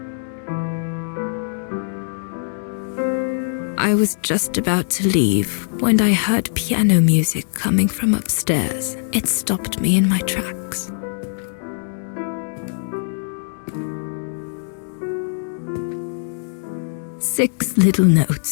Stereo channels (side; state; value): right; silent; digital silence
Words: I was just about to leave when I heard piano music coming from upstairs. It stopped me in my tracks. Six little